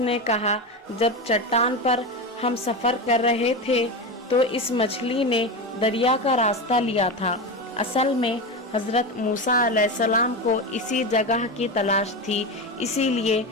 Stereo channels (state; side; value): normal; both; correlation 0.19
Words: نے کہا، جب چٹان پر ہم سفر کر رہے تھے تو اس مچھلی نے دریا کا راستہ لیا تھا۔ اصل میں حضرت موسیٰ علیہ السلام کو اسی جگہ کی تلاش تھی، اسی لیے